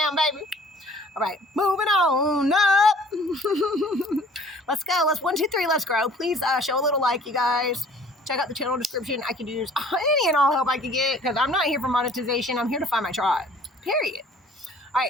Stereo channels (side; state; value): both; normal; correlation 0.52